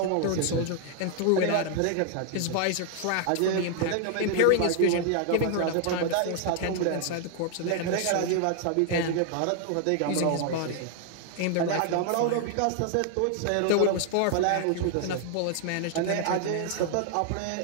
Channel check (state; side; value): different; both; correlation 0.00